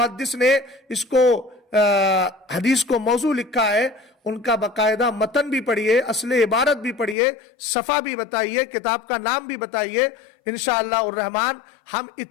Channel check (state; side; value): drops out; right; at 7.2 s